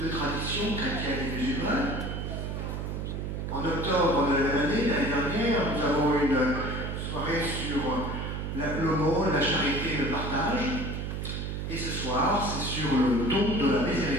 traditions, chrétiennes et musulmanes. En octobre de la même année, l'année dernière, nous avons eu une soirée sur l'aumône, la charité, le partage. Et ce soir, c'est sur le don de la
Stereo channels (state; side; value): noise; right; hum, 4 dB below the sound